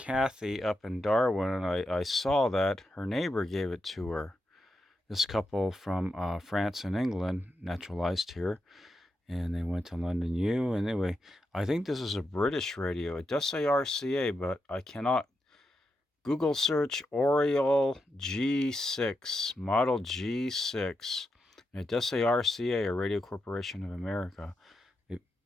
up in Darwin, and I saw that her neighbor gave it to her. This couple from France and England naturalized here, and they went to London U. And anyway, I think this is a British radio. It does say RCA, but I cannot Google search Oriole G6, Model G6. And it does say RCA, or Radio Corporation of America.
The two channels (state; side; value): normal; both; correlation 0.86